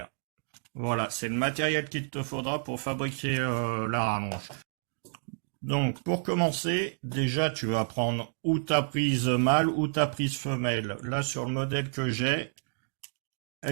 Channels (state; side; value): silent; left; digital silence